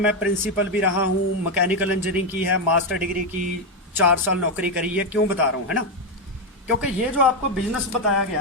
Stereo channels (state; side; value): normal; both; correlation 0.06